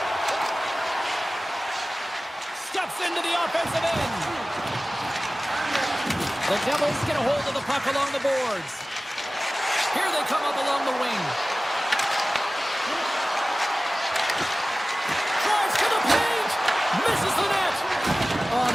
Steps into the offensive end. The Devils get a hold of the puck along the boards. Here they come up along the wing. Drives to the paint. Misses the net. Oh,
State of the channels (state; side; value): normal; both; correlation 0.97